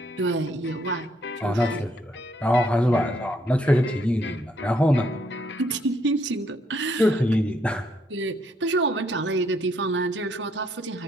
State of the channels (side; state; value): both; normal; correlation 0.71